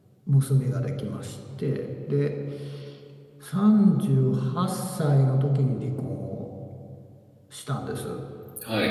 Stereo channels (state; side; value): identical; both; correlation 1.00